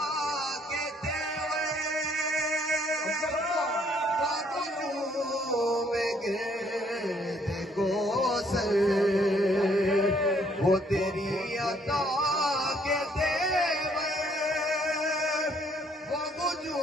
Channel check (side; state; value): both; normal; correlation 0.66